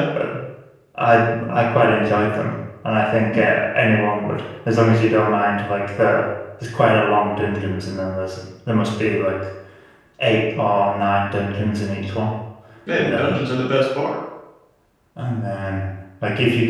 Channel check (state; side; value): identical; both; correlation 1.00